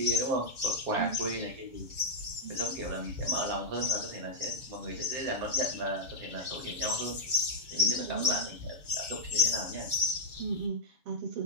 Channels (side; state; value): left; late; 7.2 ms